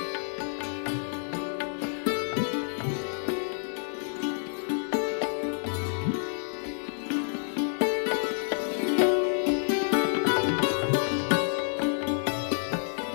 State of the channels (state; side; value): silent; right; 56 dB below the other